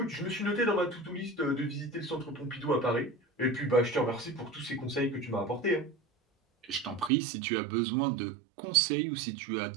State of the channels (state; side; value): drops out; left; at 7.1 s